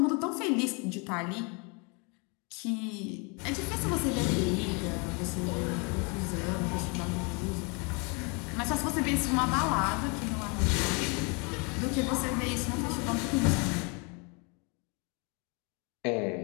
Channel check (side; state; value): right; quieter; 32.3 dB